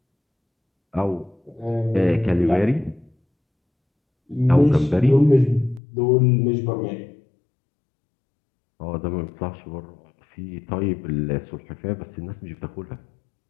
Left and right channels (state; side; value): drops out; right; at 5.8 s